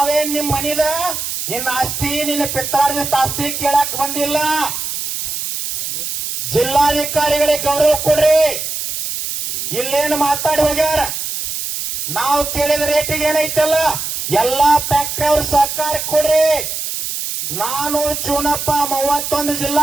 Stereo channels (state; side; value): noise; right; hiss, 4 dB below the sound